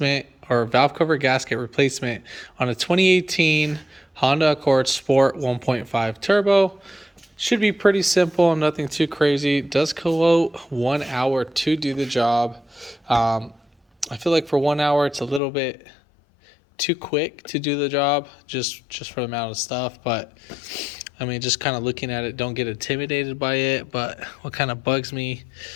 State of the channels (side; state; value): right; drops out; at 15.4 s